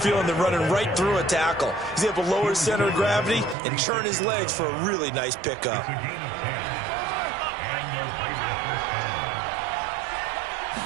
than running right through a tackle. He's able to lower his center of gravity and churn his legs for a really nice pickup.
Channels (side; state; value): left; drops out; at 3.6 s